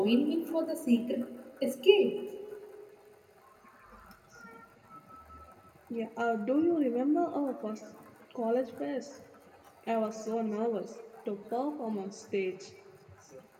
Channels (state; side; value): identical; both; correlation 1.00